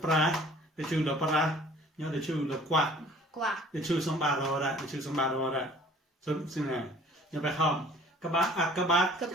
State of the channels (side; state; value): both; normal; correlation 0.52